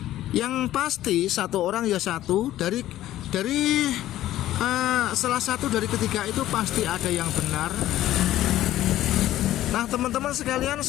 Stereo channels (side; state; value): right; quieter; 13.9 dB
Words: Yang pasti satu orang ya satu, dari salah satu dari ketiga itu pasti ada yang benar. Nah teman-teman sekalian,